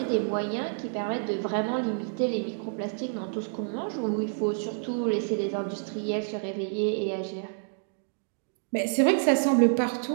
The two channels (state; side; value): silent; left; digital silence